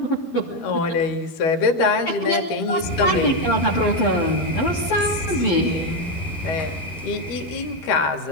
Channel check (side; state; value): right; late; 12 ms